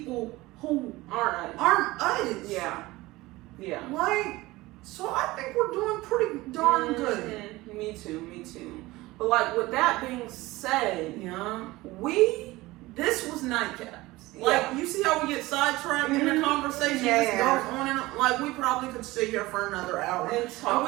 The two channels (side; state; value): left; quieter; 19.7 dB